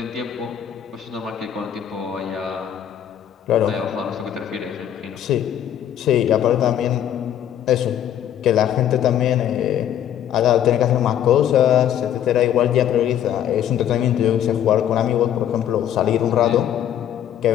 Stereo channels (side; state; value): right; quieter; 10.3 dB